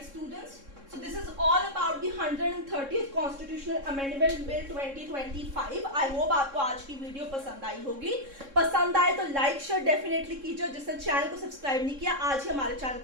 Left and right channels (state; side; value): late; left; 3.6 ms